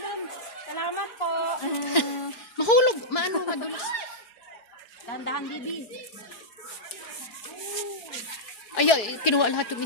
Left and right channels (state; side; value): late; right; 4.7 ms